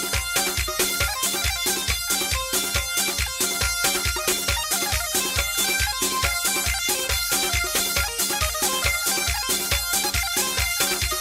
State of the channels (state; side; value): identical; both; correlation 1.00